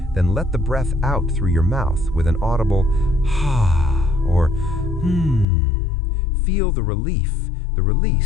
then let the breath out through your mouth with an audible ha or Feel the relief, the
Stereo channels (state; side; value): drops out; right; at 5.5 s